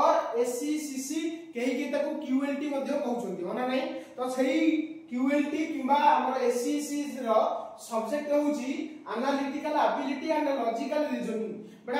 एससीसीसी कहीं के ताको क्यूएलटी मध्ये कहउछंती माने नै तो सही क्यूएलटी किबा हमर एससीसी रो सब्जेक्ट होउची analytical ability and logical reasoning.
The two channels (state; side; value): identical; both; correlation 1.00